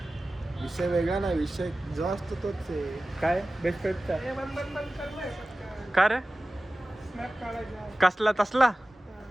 विषय वेगळा नाही. विषय जो असतो तोच आहे. काय बेस्ट फ्रेंडचा हे बंद करलाय पटकन. का रे स्नॅप काढायचा. कसला तसला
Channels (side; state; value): both; normal; correlation 0.96